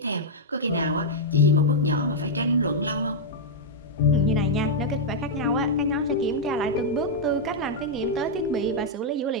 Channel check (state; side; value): normal; both; correlation -0.05